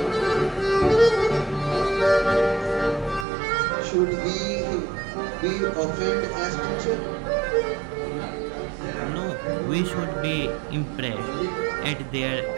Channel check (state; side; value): drops out; left; at 3.2 s